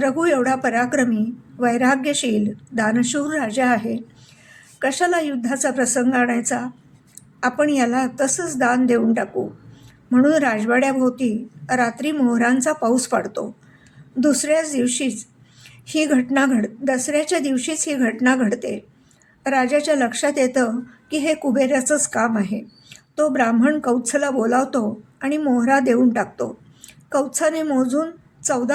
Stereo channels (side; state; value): both; identical; correlation 1.00